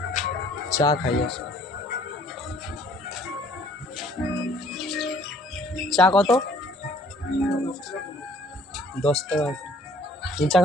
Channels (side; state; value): both; normal; correlation 0.58